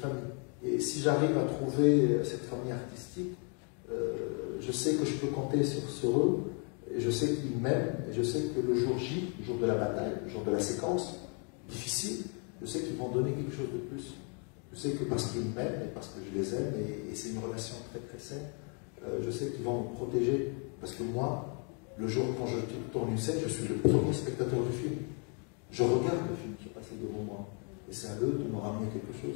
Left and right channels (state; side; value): quieter; right; 38.2 dB